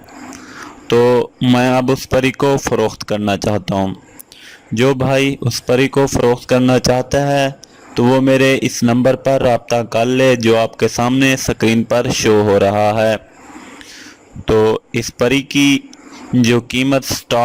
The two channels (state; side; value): identical; both; correlation 1.00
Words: تو میں اب اس پری کو فروخت کرنا چاہتا ہوں۔ جو بھائی اس پری کو فروخت کرنا چاہتا ہے تو وہ میرے اس نمبر پر رابطہ کر لے جو آپ کے سامنے سکرین پر شو ہو رہا ہے۔ تو اس پری کی جو قیمت